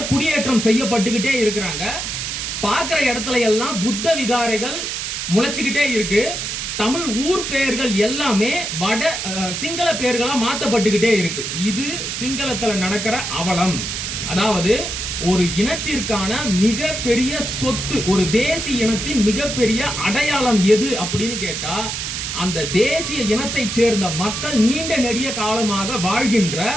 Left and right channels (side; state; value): right; noise; hiss, 4 dB below the sound